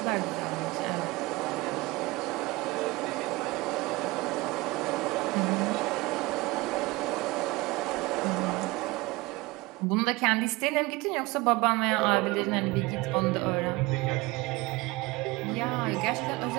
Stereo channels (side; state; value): left; quieter; 22.4 dB